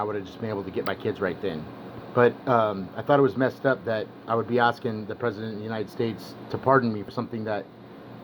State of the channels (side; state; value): both; identical; correlation 1.00